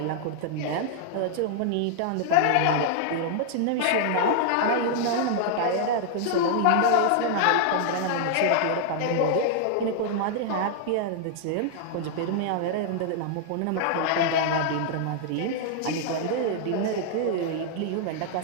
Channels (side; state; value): both; different; correlation 0.00